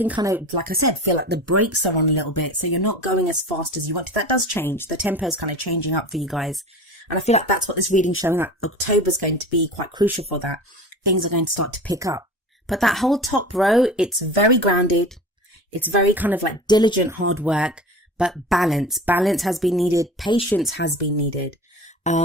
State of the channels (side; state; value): both; normal; correlation 0.35